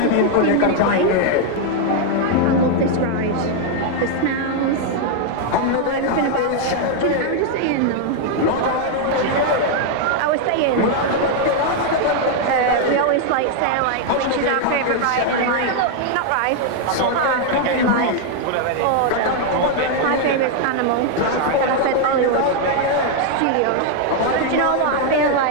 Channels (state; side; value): different; both; correlation 0.00